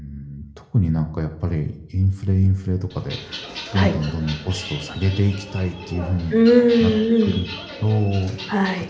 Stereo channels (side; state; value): both; identical; correlation 1.00